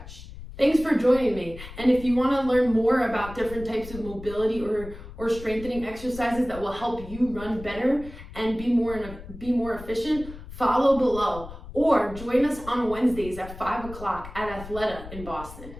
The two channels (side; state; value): left; noise; rumble, 14 dB below the sound